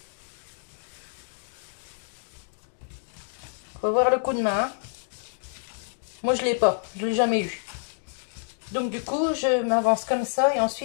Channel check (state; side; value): silent; right; digital silence